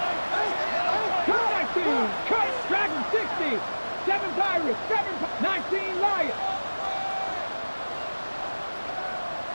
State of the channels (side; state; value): both; inverted; correlation -1.00